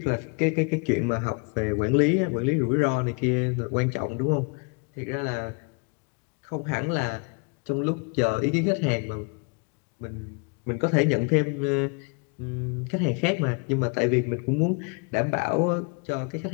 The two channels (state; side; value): quieter; right; 33.7 dB